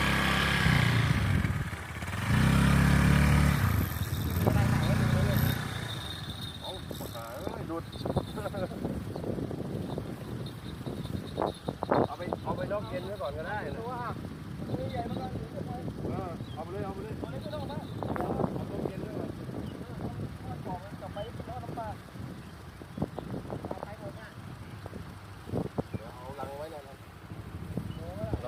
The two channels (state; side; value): identical; both; correlation 1.00